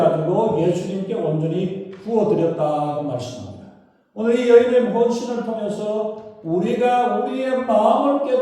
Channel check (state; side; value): identical; both; correlation 1.00